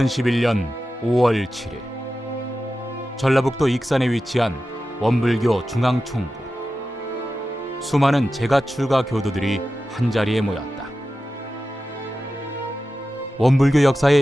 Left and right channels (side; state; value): both; normal; correlation 0.93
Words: 5월 7일 전라북도 익산에 위치한 원불교 중앙총부. 수많은 재가출가 교도들이 한자리에 모였다. 원불교